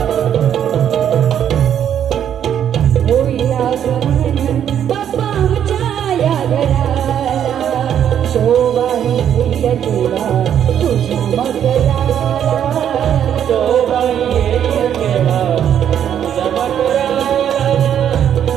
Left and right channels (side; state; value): left; quieter; 9.5 dB